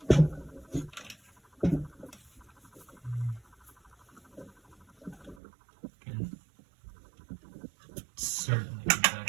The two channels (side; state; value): left; drops out; at 5.4 s